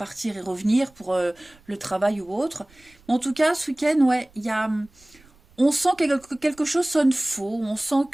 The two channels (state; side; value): noise; right; rumble, 29 dB below the sound